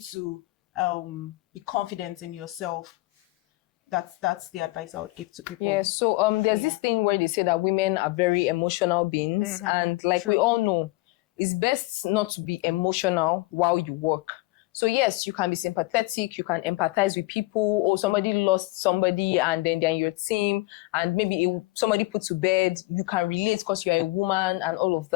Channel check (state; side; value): quieter; right; 21.2 dB